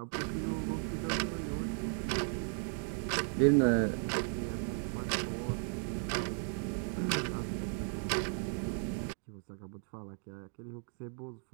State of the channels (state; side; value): silent; left; 54 dB below the other